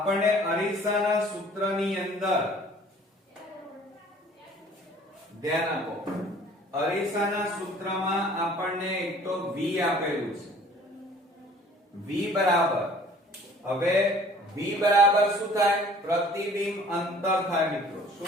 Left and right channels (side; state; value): both; normal; correlation 0.52